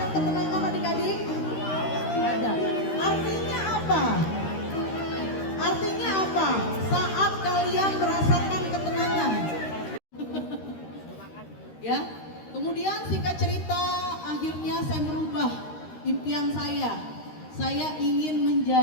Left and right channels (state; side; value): late; right; 13 ms